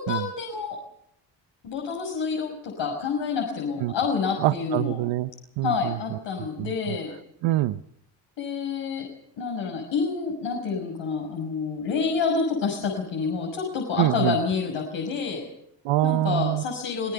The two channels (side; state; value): both; normal; correlation 0.13